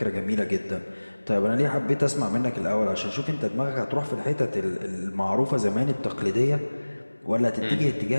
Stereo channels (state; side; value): inverted; both; correlation -1.00